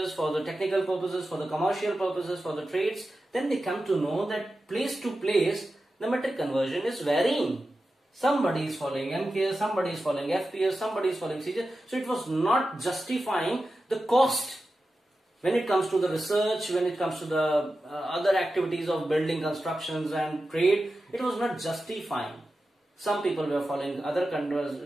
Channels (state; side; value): normal; both; correlation 0.92